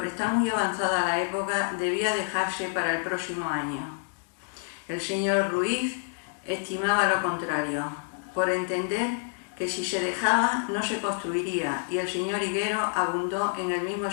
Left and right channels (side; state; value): right; silent; 59 dB below the other